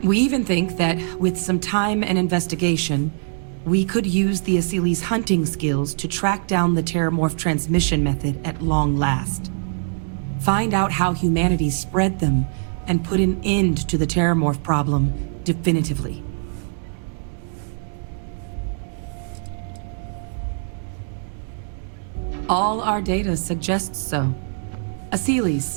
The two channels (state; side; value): silent; left; digital silence